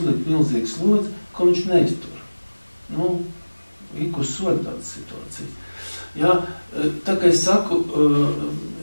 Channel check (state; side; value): inverted; both; correlation -1.00